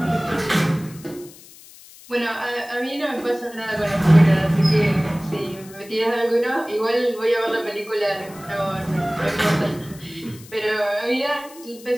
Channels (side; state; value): left; noise; hiss, 21 dB below the sound